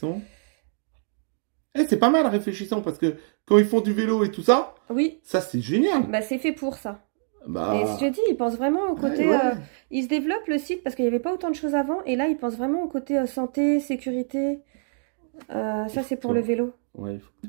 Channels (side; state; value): left; silent; digital silence